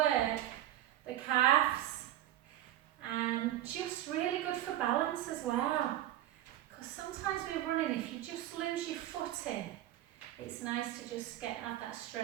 the calves and just really good for balance as well. Because sometimes we're running, if you just lose your footing, it's nice to just have that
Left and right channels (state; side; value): quieter; left; 13.3 dB